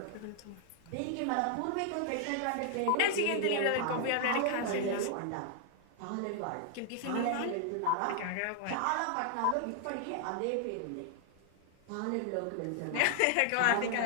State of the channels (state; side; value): different; both; correlation 0.00